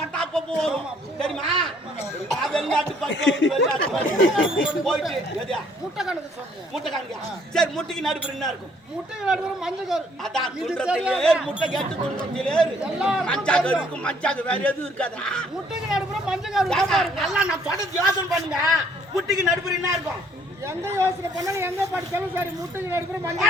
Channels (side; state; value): both; normal; correlation 0.63